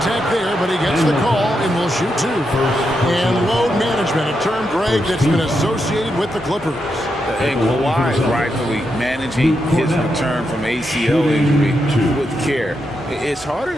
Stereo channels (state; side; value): normal; both; correlation 0.84